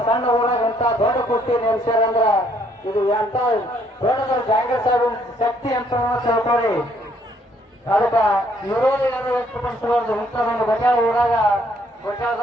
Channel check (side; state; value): both; normal; correlation 0.67